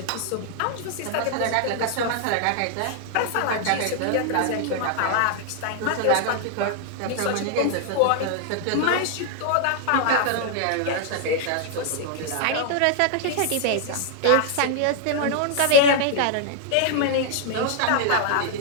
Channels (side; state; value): both; different; correlation -0.01